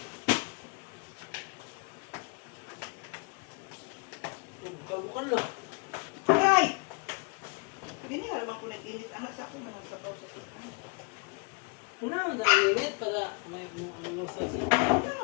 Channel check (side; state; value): right; quieter; 34.8 dB